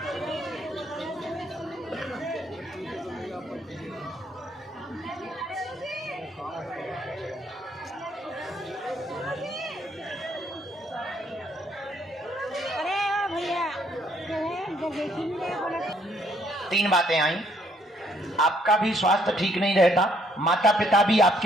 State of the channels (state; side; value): normal; both; correlation 0.68